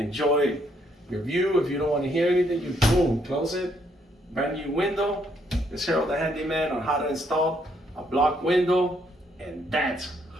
your view. If you don't want to hear anything, you boom, close it. Brand new window. It's Harold the Handyman on how to install a block window, and that's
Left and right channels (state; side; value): normal; both; correlation 0.71